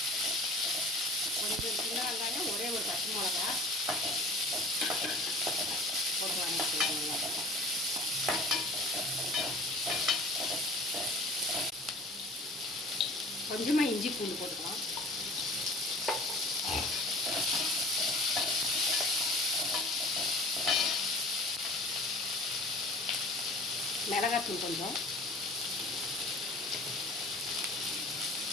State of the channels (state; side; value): normal; both; correlation 0.42